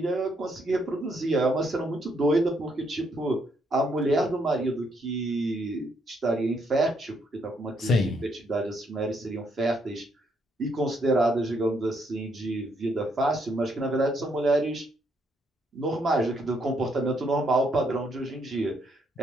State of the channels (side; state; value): both; normal; correlation 0.73